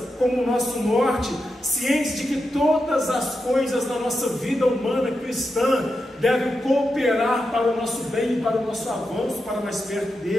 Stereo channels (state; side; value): normal; both; correlation 0.88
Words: como o nosso norte, cientes de que todas as coisas na nossa vida humana cristã devem cooperar para o nosso bem e para o nosso avanço, para mais perto